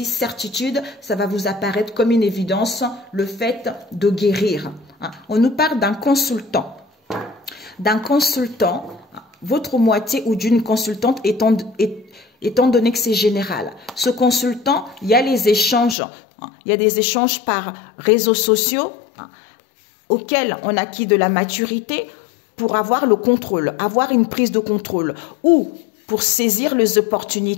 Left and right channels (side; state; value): right; drops out; at 16.0 s